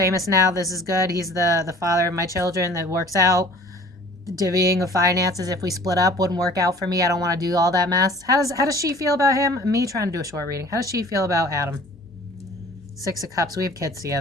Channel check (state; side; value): normal; both; correlation 0.48